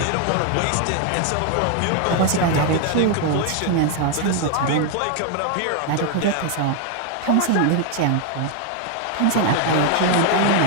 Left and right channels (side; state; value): both; different; correlation 0.00